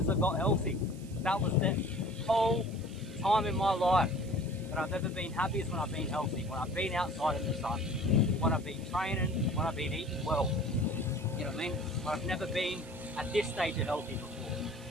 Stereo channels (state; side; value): noise; right; hiss, 22 dB below the sound